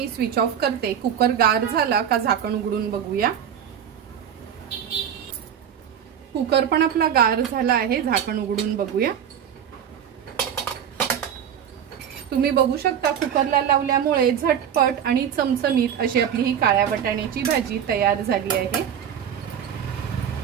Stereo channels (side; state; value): left; quieter; 8.8 dB